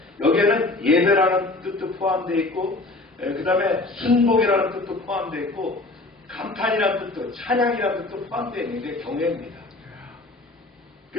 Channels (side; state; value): right; quieter; 3.0 dB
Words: 여기에는 예배라는 뜻도 포함되어 있고 그 다음에 순복이라는 뜻도 포함되어 있고 감탄이라는 뜻도 찬양이라는 뜻도 포함되어 있는 게 경외입니다.